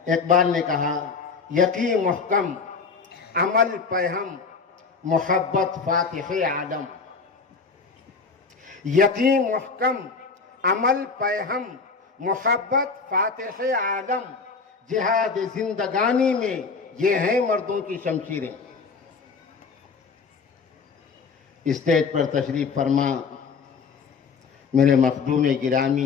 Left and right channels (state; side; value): quieter; right; 5.0 dB